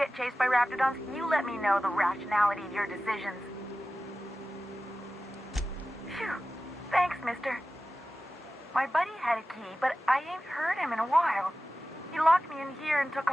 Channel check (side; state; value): both; normal; correlation 0.95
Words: chased by Raptidons, you let me know the rationality of your decisions. Phew. Thanks, mister. My buddy had a key, but I ain't heard him in a while. He locked me in here and took